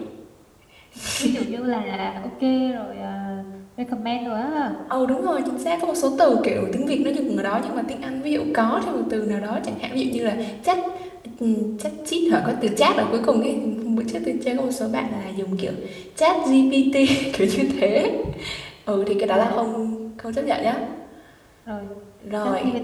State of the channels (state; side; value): identical; both; correlation 1.00